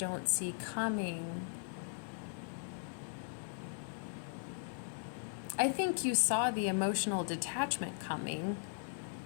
see coming. I think you saw the emotional detachment coming.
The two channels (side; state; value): right; silent; digital silence